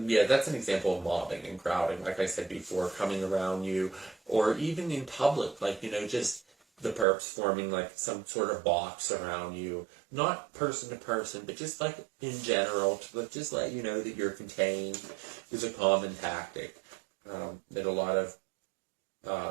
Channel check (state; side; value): drops out; left; at 7.1 s